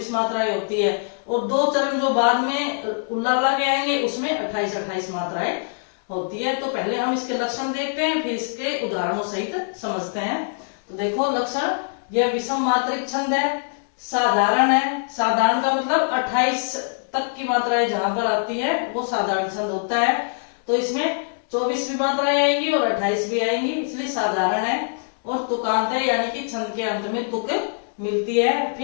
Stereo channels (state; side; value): silent; right; digital silence